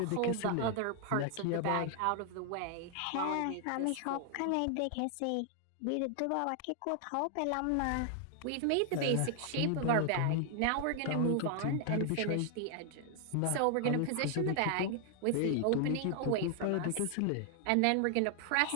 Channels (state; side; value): different; both; correlation 0.00